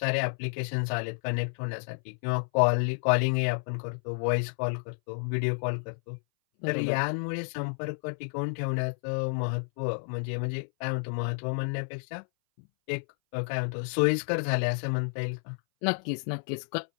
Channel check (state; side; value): silent; right; 58 dB below the other